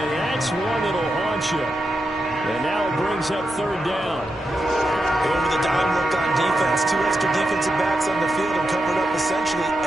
that's one that'll haunt you. And now it brings up third down. Over the dime look on defense. 2 extra defensive backs on the field and covered up essentially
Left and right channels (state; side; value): normal; both; correlation 0.87